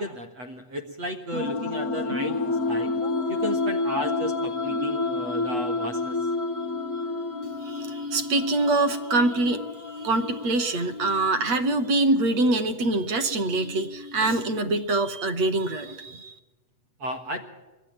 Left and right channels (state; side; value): late; left; 8.2 ms